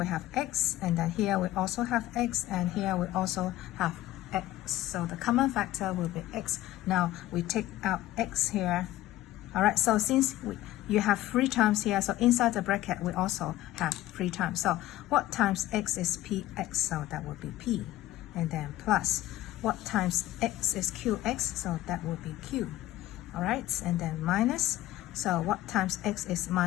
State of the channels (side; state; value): right; quieter; 15.2 dB